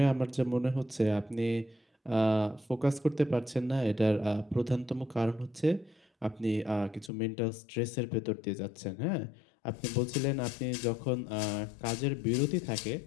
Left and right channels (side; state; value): right; drops out; at 7.1 s